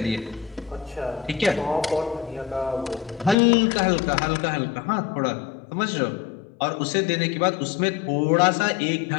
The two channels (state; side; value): drops out; right; at 3.4 s